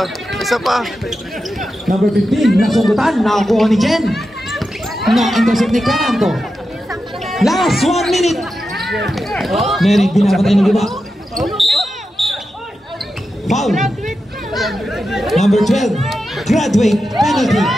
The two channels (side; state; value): both; normal; correlation 0.90